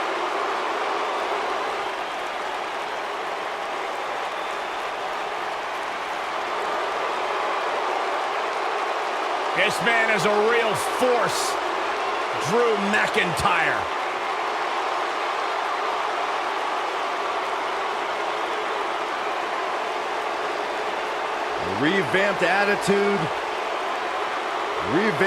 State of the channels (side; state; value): both; identical; correlation 1.00